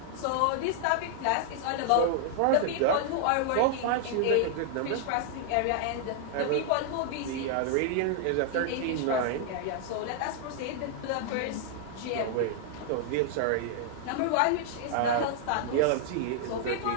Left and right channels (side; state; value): both; different; correlation -0.01